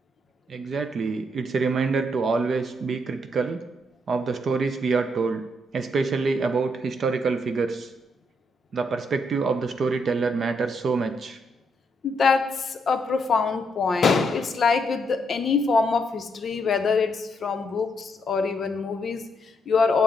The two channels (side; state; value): both; normal; correlation 0.76